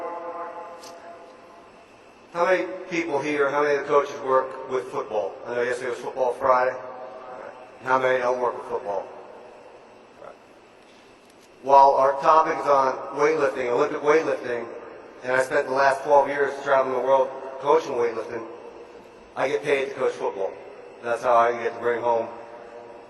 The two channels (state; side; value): identical; both; correlation 1.00